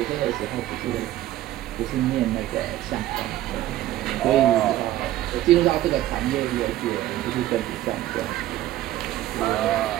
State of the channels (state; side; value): quieter; left; 14.5 dB